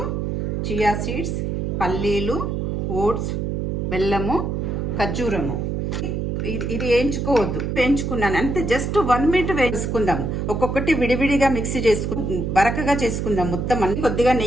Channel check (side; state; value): right; noise; hum, 1 dB below the sound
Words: చియా సీడ్స్, పల్లీలు, ఓట్స్, బెల్లము, ఖర్జూరము. ఇది వేయించుకోవద్దు, వేయించుకున్నాను అంతే. జస్ట్ 1 మినిట్ వేసుకుందాం. ఒక్కొక్కటి విడివిడిగా మిక్సీ బరకగా చేసుకుందాం మొత్తం అన్ని. కొద్దిగా